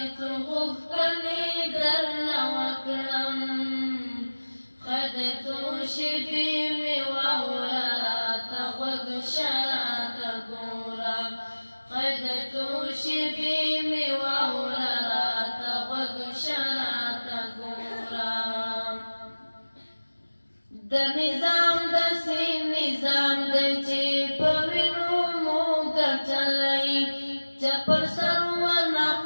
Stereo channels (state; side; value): inverted; both; correlation -1.00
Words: څو غوښتنې درنه وکړم ښه د څو شېبې مې واوره راته غوږ شه راته ګوره ښه د څو شېبې مې واوره راته غوږ شه راته ګوره د نظام داسې نظام دی چې په وینو مو ګټلی چا پر سر ورنه